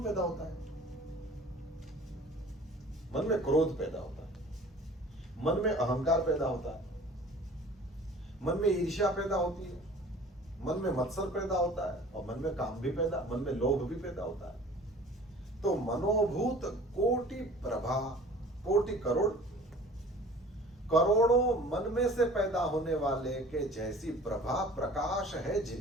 पैदा होता है? मन में क्रोध पैदा होता है, मन में अहंकार पैदा होता है, मन में ईर्ष्या पैदा होती है, मन में मत्सर पैदा होता है, और मन में काम भी पैदा, मन में लोभ भी पैदा होता है। तो मनोभूत कोटि प्रभा, कोटि करोड़, करोड़ों मन में से पैदा होने वाले के जैसी प्रभा प्रकाश है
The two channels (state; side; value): normal; both; correlation 0.46